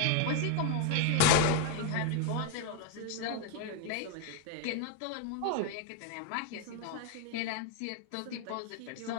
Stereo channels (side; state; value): both; different; correlation 0.01